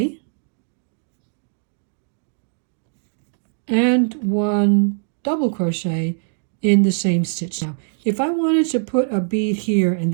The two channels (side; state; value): left; silent; digital silence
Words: and 1 double crochet in the same stitch. Now, if I wanted to put a bead here in